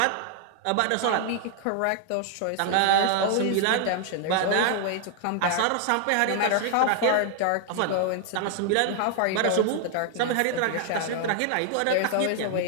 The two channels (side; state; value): both; different; correlation 0.00